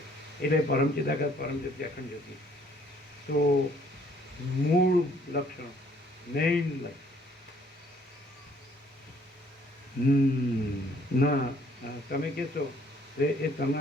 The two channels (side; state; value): both; normal; correlation 0.62